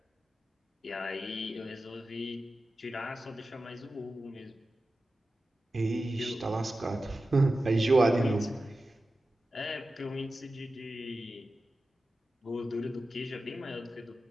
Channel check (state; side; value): normal; both; correlation 0.93